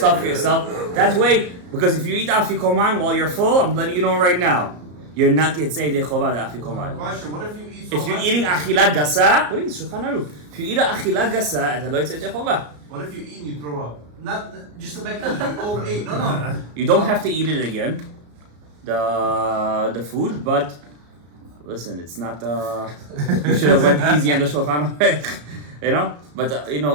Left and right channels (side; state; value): left; late; 34 ms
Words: yourself. That way, because if you eat afikoman while you're full, I'm letting you know right now, you're not yet say de chovah the afikoman. Question, what if you eat so If you're much? eating achila gasa, what is Shulchan Aruch? If you eat a achila gasa, אתה לא יצא ידי חובה. What if you eat and you throw up? Not just to make you overeat. No. You don't have to eat it again, the food, but listen, it's not. You should have went easy on the Shulchan Aruch, you know. But